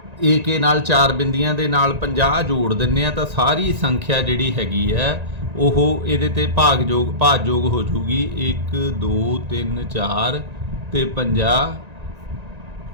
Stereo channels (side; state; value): left; late; 1.9 ms